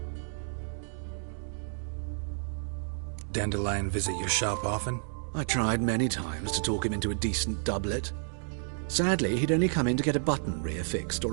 Dandelion visit your shop often? I tried many times to talk him into a decent doublet. Sadly, he'd only come in to get a button reaffixed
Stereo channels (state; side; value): silent; left; digital silence